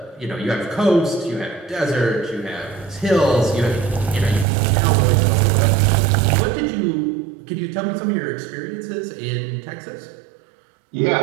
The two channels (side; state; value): left; drops out; at 4.5 s